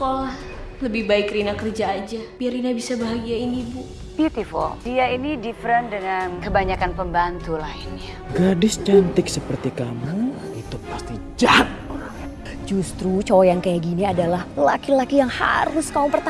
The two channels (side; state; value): both; identical; correlation 1.00